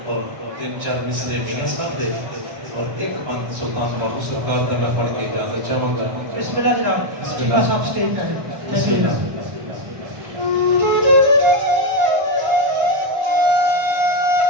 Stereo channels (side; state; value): left; late; 1.6 ms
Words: और तीन चार मिसरे मियां साहब दे और एक बंद सुल्तान बाबू सरकार का मैं पढ़ के इजाजत चाहूंगा। बिस्मिल्लाह जनाब, चीमा साहब स्टेज पर बिस्मिल्लाह।